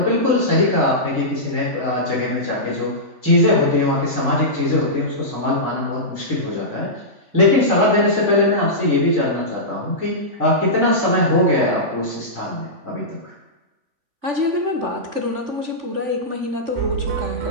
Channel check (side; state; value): left; late; 3.5 ms